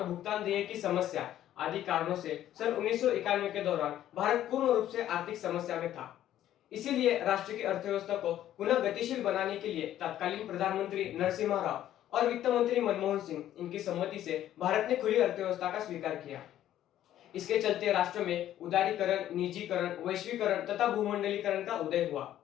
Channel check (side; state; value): right; quieter; 12.2 dB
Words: भुगतान देय की समस्या आदि कारणों से सन 1991 के दौरान भारत पूर्ण रूप से आर्थिक समस्या में था। इसीलिए राष्ट्र की अर्थव्यवस्था को पुनः गतिशील बनाने के लिए तत्कालीन प्रधानमंत्री नरसिम्हा राव और वित्त मंत्री मनमोहन सिंह इनकी सम्मति से भारत ने खुली अर्थव्यवस्था का स्वीकार किया। इसके चलते राष्ट्र में उदारीकरण, निजीकरण, वैश्वीकरण तथा भूमंडलीकरण का उदय हुआ।